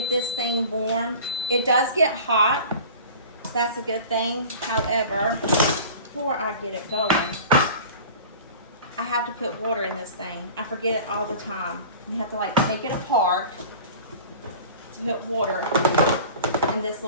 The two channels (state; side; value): inverted; both; correlation -0.40